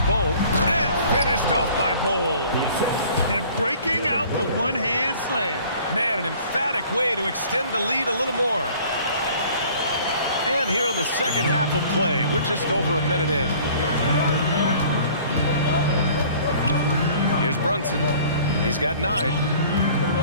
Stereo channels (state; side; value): inverted; both; correlation -0.51